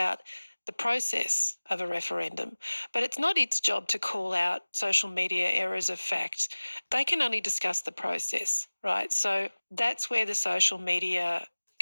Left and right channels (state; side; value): inverted; both; correlation -1.00